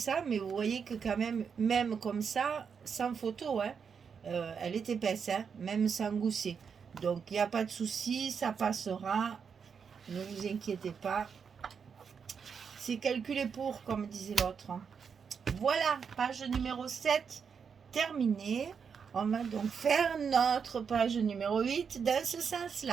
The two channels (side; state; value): left; quieter; 6.4 dB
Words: mais vous voyez que quand même comme ça sans photo hein, elle est épaisse hein, même sans gousset, donc il n'y a pas de souci, ça passera, ne vous inquiétez pas, c'est calculé pour comme disait l'autre. Voilà, page numéro 7 terminée. On va donc faire notre page numéro 8 dans ce sens